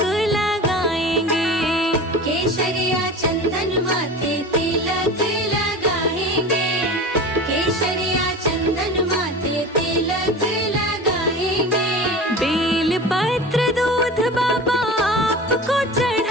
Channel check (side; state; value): both; normal; correlation 0.34